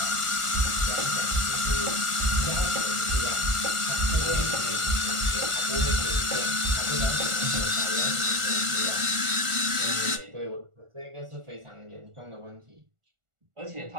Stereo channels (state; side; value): late; left; 1.4 ms